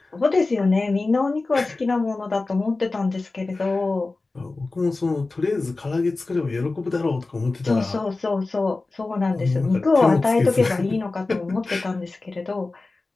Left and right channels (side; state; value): right; quieter; 3.5 dB